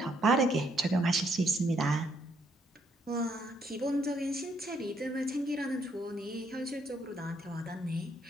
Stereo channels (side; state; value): both; normal; correlation 0.71